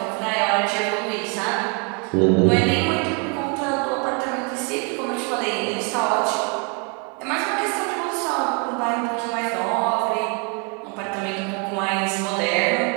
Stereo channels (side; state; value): left; quieter; 35.1 dB